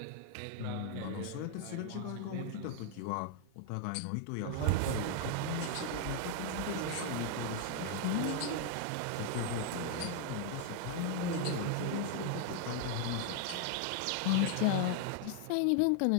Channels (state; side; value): different; both; correlation 0.00